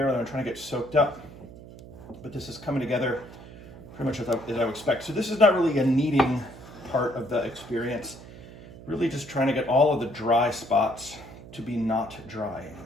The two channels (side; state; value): right; noise; hum, 17 dB below the sound